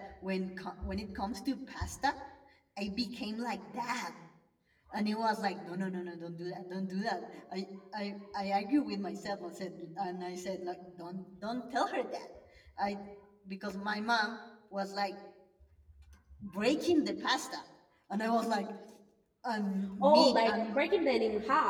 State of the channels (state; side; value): identical; both; correlation 1.00